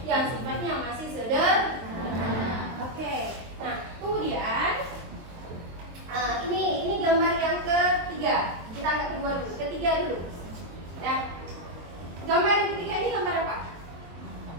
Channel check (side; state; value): left; late; 23 ms